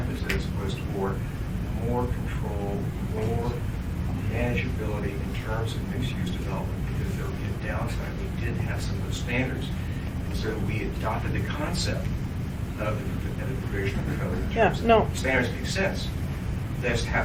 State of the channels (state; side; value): identical; both; correlation 1.00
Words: was toward more control, more manageability in terms of mixed-use development, because there would be a downside. We did have some of those standards, and so we adopted the concept of the provision of the code. In Yeah, terms of no. Standards make sense. They just